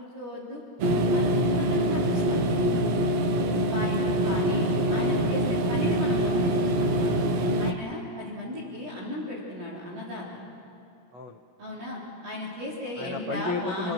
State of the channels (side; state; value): left; late; 17 ms